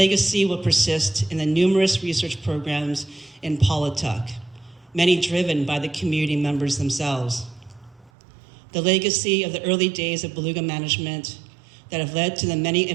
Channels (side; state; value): left; drops out; at 8.1 s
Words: will persist in the numerous research programs in Polituck, many driven by the community members themselves. The legacy of the early days of beluga management that have led to the many